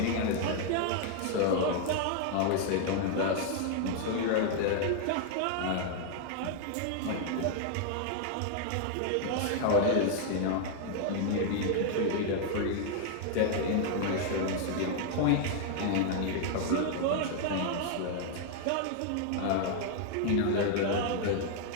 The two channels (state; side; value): different; both; correlation 0.00